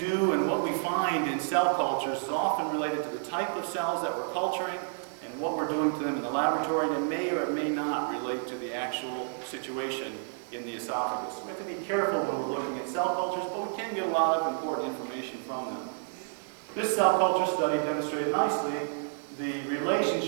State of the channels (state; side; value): silent; left; digital silence